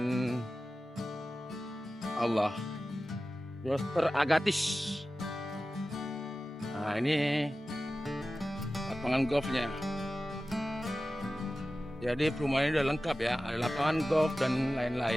Allah. Dokter Agatis. Nah, ini lapangan golfnya. Jadi perumahan ini udah lengkap ya, ada lapangan golf dan lain-lain.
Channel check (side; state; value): both; normal; correlation 0.95